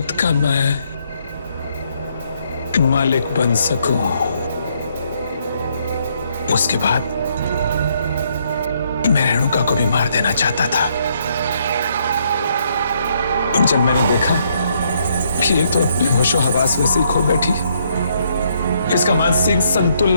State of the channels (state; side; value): inverted; both; correlation -0.71